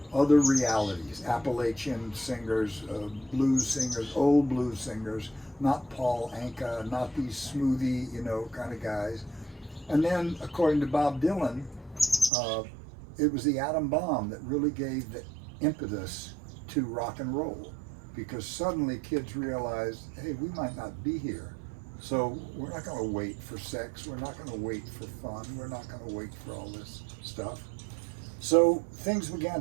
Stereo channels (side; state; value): left; drops out; at 12.3 s